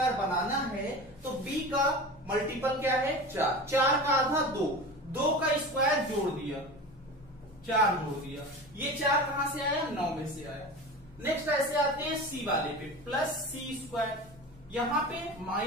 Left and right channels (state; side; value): normal; both; correlation 0.31